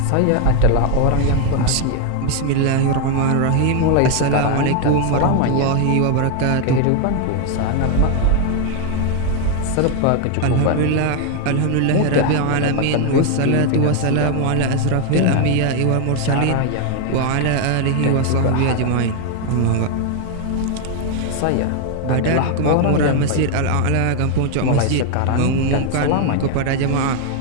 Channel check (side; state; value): both; different; correlation 0.00